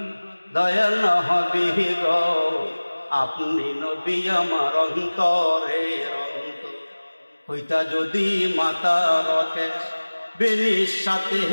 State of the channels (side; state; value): both; inverted; correlation -1.00